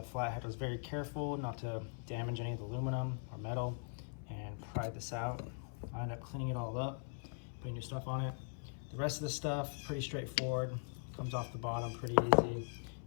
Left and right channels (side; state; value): right; silent; 51 dB below the other